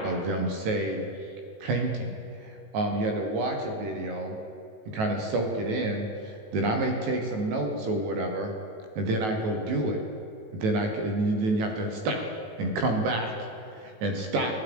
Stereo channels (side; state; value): left; late; 19 ms